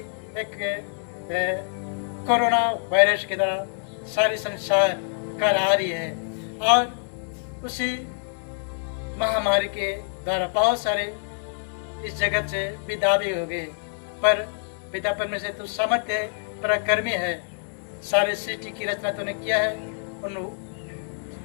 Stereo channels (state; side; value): silent; right; digital silence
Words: एक कोरोना वायरस के द्वारा सारी संसार कर आ रही है और उसी महामारी के द्वारा बहुत सारे इस जगत से विदा भी हो गए। पर पिता परमेश्वर तू सामर्थ्य है, पराक्रमी है, सारे सृष्टि की रचना तूने किया है। उन